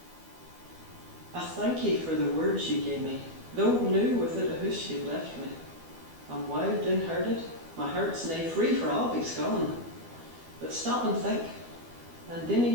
I thank ye for the words ye gave me, though new with it a hoosh ye left me. I'm wild and herded, my heart's nae free for I'll be gone. But stop and think, and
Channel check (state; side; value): late; left; 12 ms